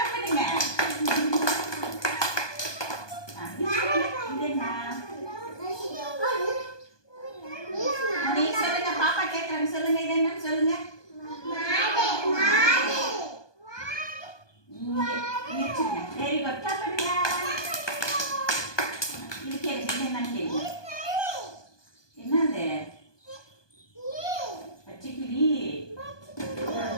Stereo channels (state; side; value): late; right; 1.2 ms